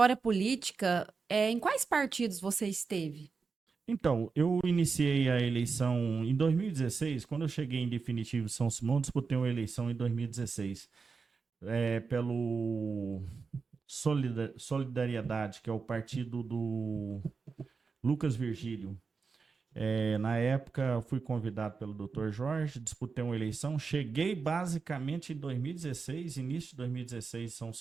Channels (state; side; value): quieter; left; 4.9 dB